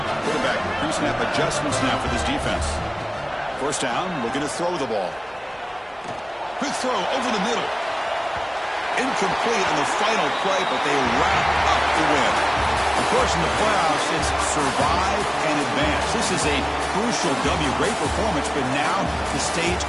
Quarterback pre-snap adjustments now for this defense. 1st down, looking to throw the ball. Quick throw over the middle. Incomplete on the final play, but they wrap up the win. Of course, in the playoffs, it's survive and advance. This is a crucial W. Great performance, but now the stage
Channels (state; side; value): identical; both; correlation 1.00